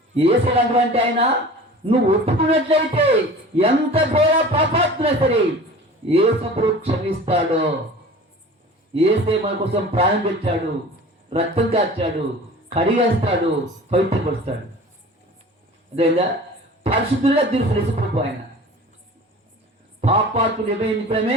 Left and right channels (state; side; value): normal; both; correlation 0.41